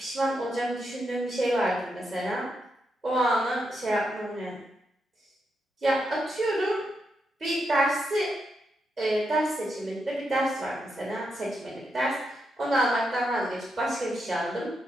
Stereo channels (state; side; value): normal; both; correlation 0.83